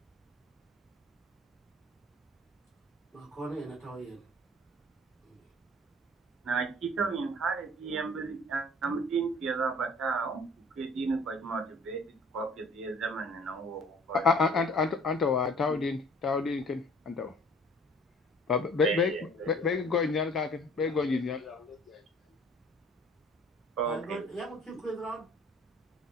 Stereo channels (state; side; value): normal; both; correlation 0.51